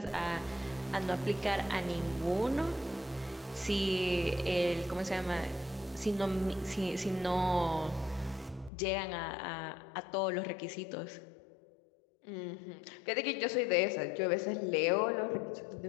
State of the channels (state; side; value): drops out; right; at 8.7 s